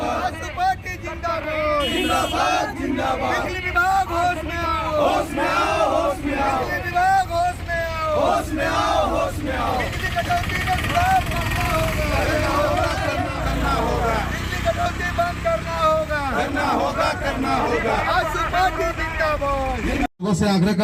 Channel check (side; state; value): both; identical; correlation 1.00